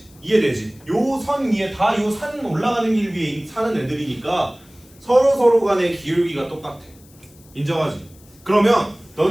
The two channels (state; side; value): noise; left; hiss, 27 dB below the sound